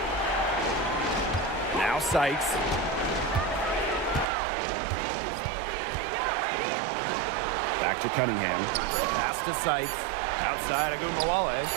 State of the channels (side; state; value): left; drops out; at 4.2 s